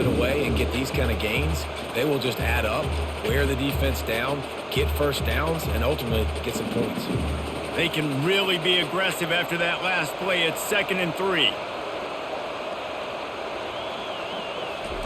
away and get these kind of gains, they will just add up, wear the defense down, get first downs, and ultimately get some points. They can really be aggressive after that last play. It's 2nd and 3.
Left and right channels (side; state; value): both; identical; correlation 1.00